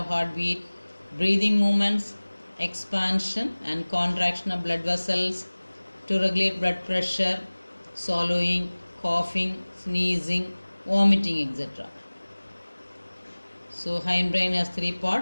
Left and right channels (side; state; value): both; inverted; correlation -1.00